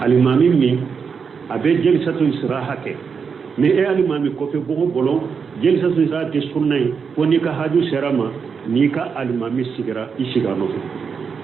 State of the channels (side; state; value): left; quieter; 6.0 dB